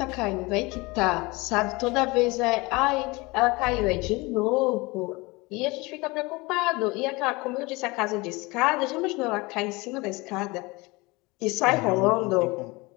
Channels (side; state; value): right; quieter; 24.0 dB